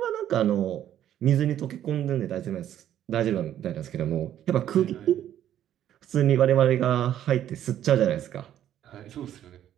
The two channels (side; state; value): left; quieter; 11.2 dB